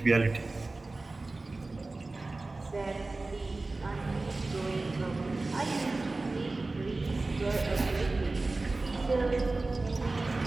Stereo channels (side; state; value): left; quieter; 3.3 dB